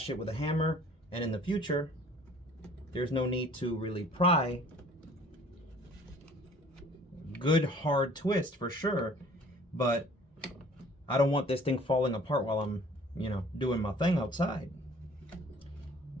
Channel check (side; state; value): both; normal; correlation 0.52